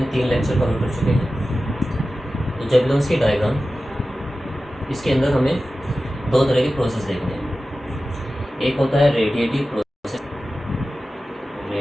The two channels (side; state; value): both; normal; correlation 0.94